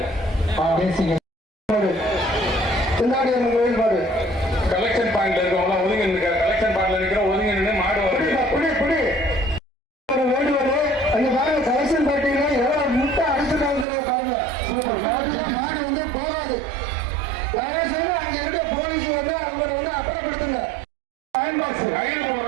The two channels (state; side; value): drops out; left; at 13.9 s